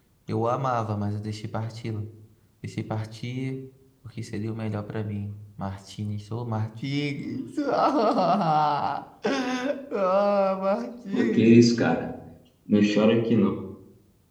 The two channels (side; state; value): both; identical; correlation 1.00